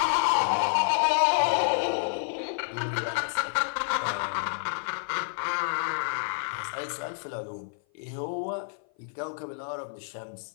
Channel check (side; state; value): right; silent; 55 dB below the other